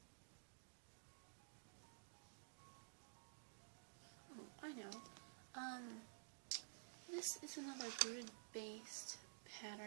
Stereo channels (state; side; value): silent; left; digital silence